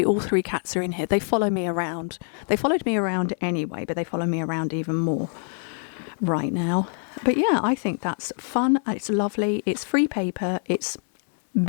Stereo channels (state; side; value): silent; right; 57 dB below the other